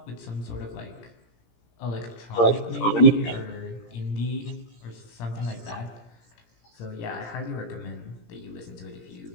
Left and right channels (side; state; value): right; late; 17 ms